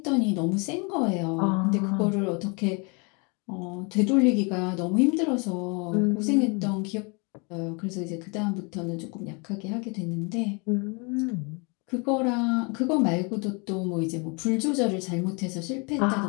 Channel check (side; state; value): right; quieter; 32.1 dB